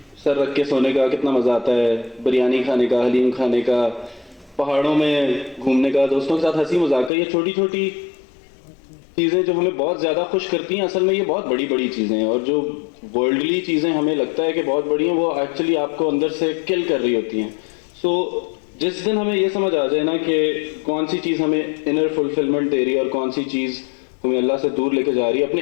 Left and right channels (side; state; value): right; drops out; at 7.1 s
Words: سر رکھ کے سونے کا کتنا مزہ آتا ہے, بریانی کھانے کا, حلیم کھانے کا, پہاڑوں میں گھومنے کا, دوستوں کے ساتھ ہنسی مذاق کا. یہ چھوٹی چھوٹی چیزیں جو ہمیں بہت زیادہ خوش کرتی ہیں, اصل میں یہ بہت بڑی بڑی چیزیں ہیں. اور جو ورلڈلی چیزیں ہمیں لگتا ہے کہ بہت بڑی ہیں, وہ ایکچولی آپ کو اندر سے کل کر رہی ہوتی ہیں. سو جس دن ہمیں یہ سمجھ آ جائے نا کہ کون سی چیز ہمیں انر فلفلمنٹ دے رہی ہے اور کون سی چیز ہمیں اللہ سے دور لے کے جا رہی ہے, اپنے